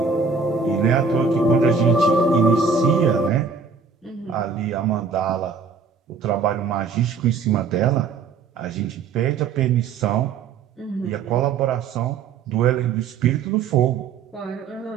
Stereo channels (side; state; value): left; quieter; 5.4 dB